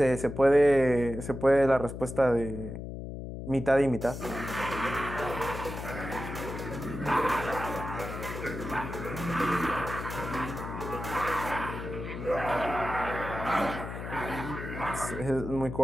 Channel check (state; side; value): noise; left; hum, 8 dB below the sound